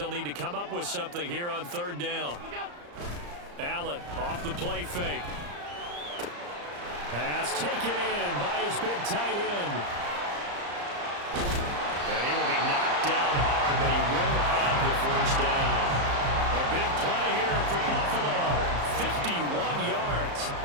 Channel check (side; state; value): left; late; 34 ms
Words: need to come up with something here on 3rd down. Allen off the play fake. Pass taken in by his big tight end. And he will be knocked down hard, but he will have the 1st down. A big play here for Buffalo. 51 yards.